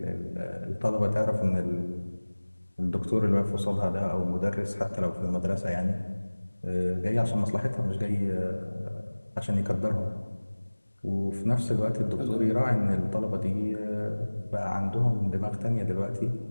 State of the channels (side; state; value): both; inverted; correlation -1.00